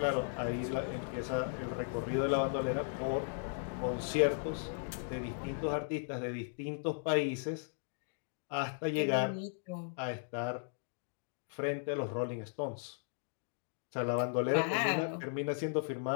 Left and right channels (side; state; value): right; silent; digital silence